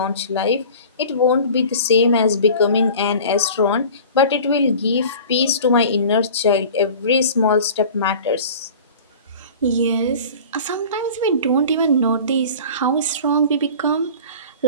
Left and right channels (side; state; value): both; inverted; correlation -0.41